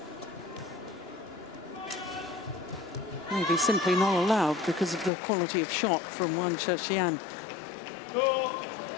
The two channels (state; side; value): drops out; right; at 5.1 s